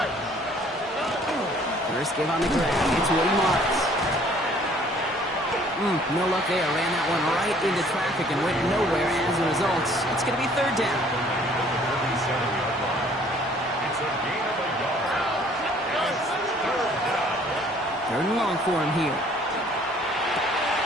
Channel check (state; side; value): normal; both; correlation 0.57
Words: First give on the ground. It's Woody Marks. No luck there. Ran that one right into traffic and went nowhere as a result. It's going to be third down. Third and long for him here.